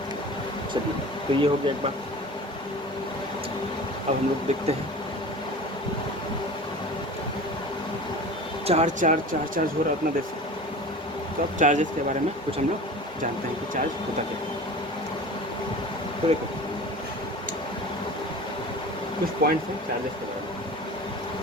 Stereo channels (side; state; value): both; normal; correlation 0.37